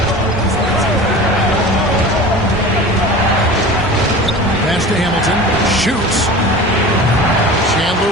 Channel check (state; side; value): normal; both; correlation 0.36